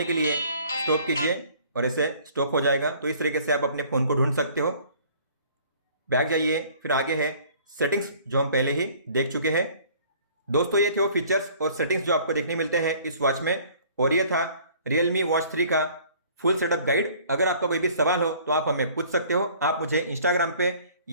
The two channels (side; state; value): both; inverted; correlation -0.53